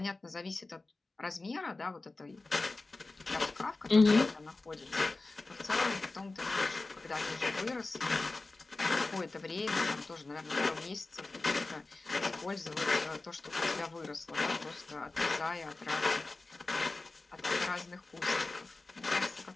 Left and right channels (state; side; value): quieter; right; 3.3 dB